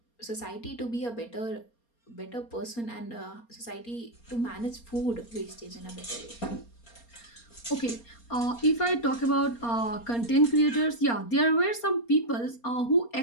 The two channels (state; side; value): late; right; 4.3 ms